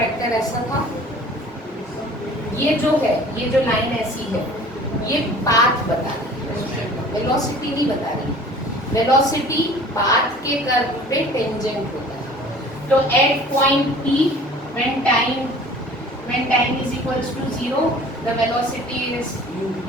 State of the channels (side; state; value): both; normal; correlation 0.47